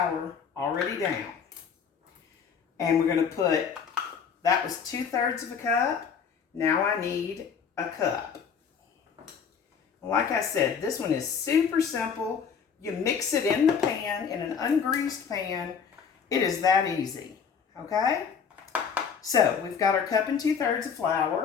already down. And we're going to put, that was 2/3 of a cup. Now I need a cup. Like I said, this one is super simple. You mix it in the pan, in an ungreased pan. It is that easy, okay? So, we've got our cup and 2/3 of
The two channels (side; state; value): right; quieter; 6.6 dB